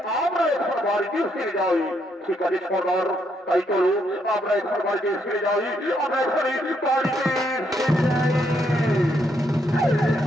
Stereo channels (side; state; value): both; normal; correlation 0.75